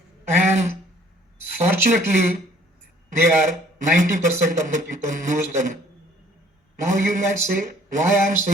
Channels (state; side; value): normal; both; correlation 0.57